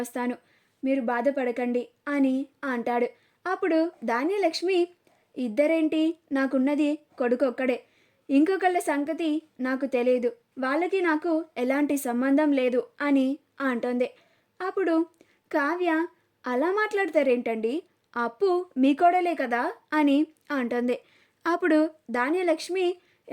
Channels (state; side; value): identical; both; correlation 1.00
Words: వస్తాను, మీరు బాధపడకండి అని అంటాడు. అప్పుడు ధాన్యలక్ష్మి, ఇద్దరేంటి, నాకున్నది కొడుకొక్కడే, ఇంకొకళ్ళ సంగతి నాకు తెలియదు, వాళ్ళకి నాకు ఎలాంటి సంబంధం లేదు అని అంటుంది. అప్పుడు కావ్య, అలా మాట్లాడతారేంటండి, అప్పు మీ కోడలే కదా అని అంటుంది. అప్పుడు ధాన్యలక్ష్మి,